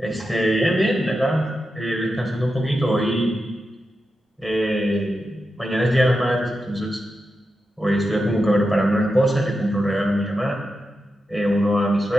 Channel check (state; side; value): normal; both; correlation 0.89